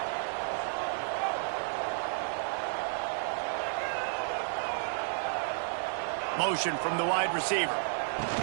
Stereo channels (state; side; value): silent; left; digital silence